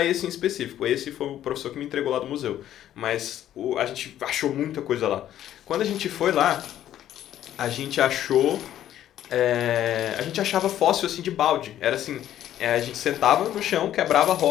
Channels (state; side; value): quieter; right; 11.8 dB